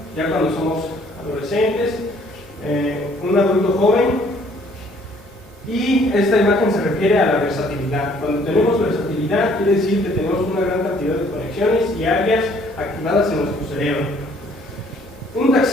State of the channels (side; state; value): both; normal; correlation 0.61